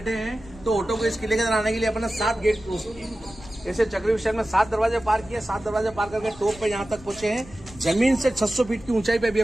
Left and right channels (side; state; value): both; normal; correlation 0.95